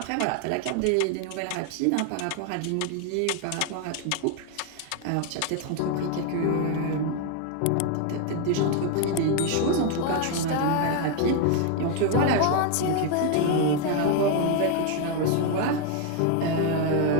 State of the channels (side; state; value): both; different; correlation 0.00